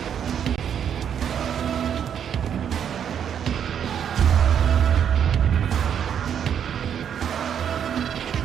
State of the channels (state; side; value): quieter; left; 8.6 dB